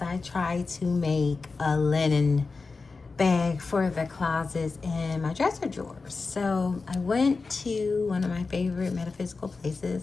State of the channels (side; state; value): right; quieter; 4.2 dB